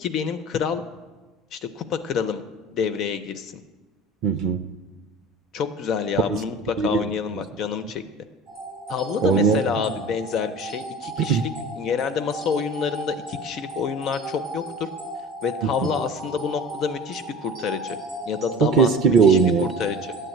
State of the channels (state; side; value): normal; both; correlation 0.39